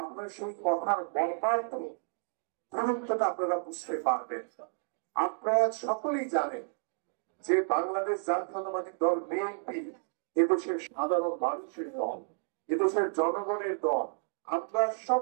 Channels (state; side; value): silent; left; digital silence